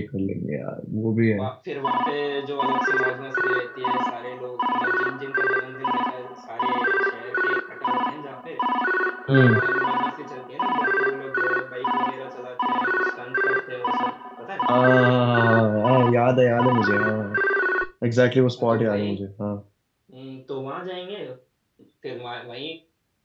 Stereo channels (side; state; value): both; identical; correlation 1.00